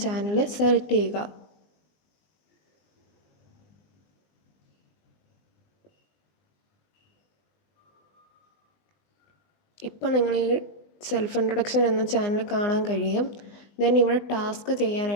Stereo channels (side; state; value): right; late; 20 ms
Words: ചാനൽ സെലക്ട് ചെയ്യുക. ഇപ്പോൾ നിങ്ങൾ ഈ സെൽഫ് ഇൻട്രൊഡക്ഷൻ എന്ന ചാനൽ കാണാൻ കഴിയും. ദെൻ ഇവിടെ ടാസ്ക്